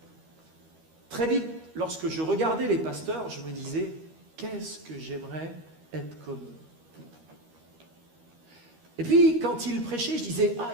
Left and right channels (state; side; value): late; left; 13 ms